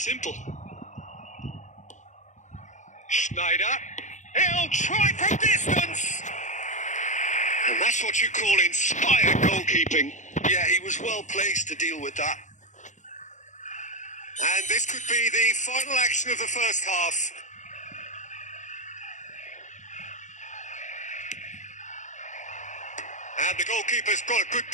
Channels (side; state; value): right; late; 0.35 ms